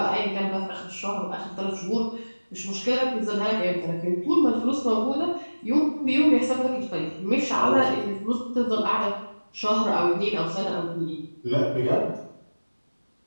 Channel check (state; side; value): inverted; both; correlation -1.00